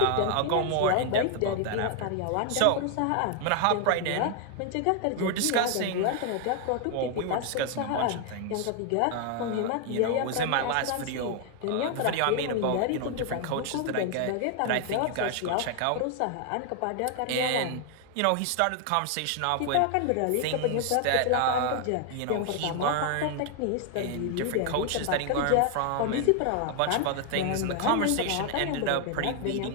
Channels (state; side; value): different; both; correlation 0.00